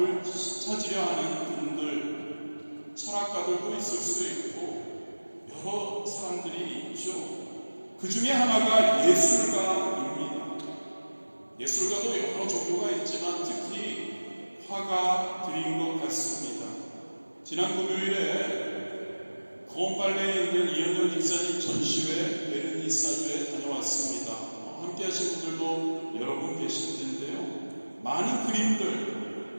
찾으려 하는 분들, 철학가들도 있을 수 있고 여러 사람들이 있죠. 그 중에 하나가 예술가입니다. 예술가도 여러 종류가 있지만 특히 화가들인 것 같습니다. 지난 금요일에 거원빨래에 있는 이현정 집사님 전시회 베르니사주에 다녀왔습니다. 함께 하신 분들도 여러분 계실 텐데요. 많은 그림들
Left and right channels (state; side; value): inverted; both; correlation -1.00